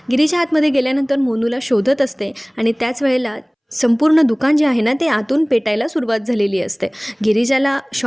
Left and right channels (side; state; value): both; identical; correlation 1.00